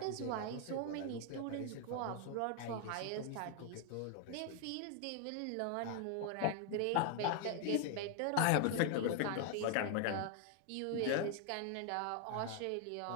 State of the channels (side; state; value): both; different; correlation 0.00